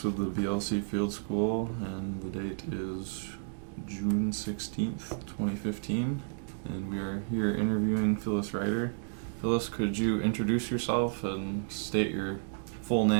with the BLC Field School, and the date is June 16th, 2015, and we are here interviewing Phyllis Reitter. Phyllis, could you introduce yourself and state your full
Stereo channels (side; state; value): left; silent; digital silence